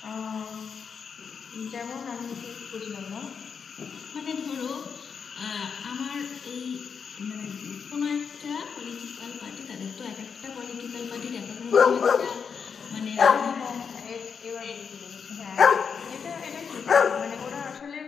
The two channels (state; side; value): quieter; right; 6.3 dB